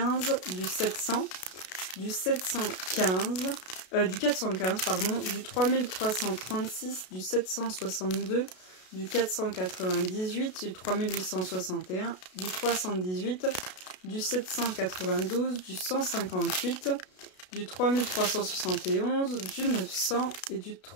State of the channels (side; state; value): right; late; 32 ms